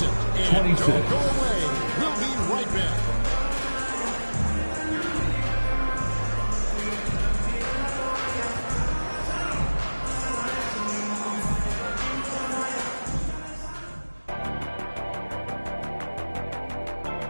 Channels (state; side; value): inverted; both; correlation -1.00